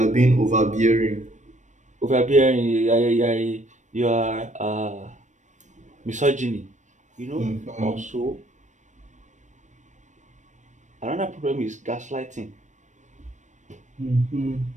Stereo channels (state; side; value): late; left; 0.35 ms